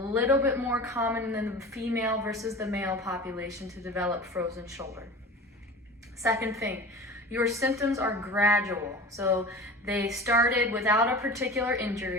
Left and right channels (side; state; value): both; normal; correlation 0.35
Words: bit more common than the female versus the male population to develop frozen shoulder. Second thing, your symptoms are gradual. So they started without a particular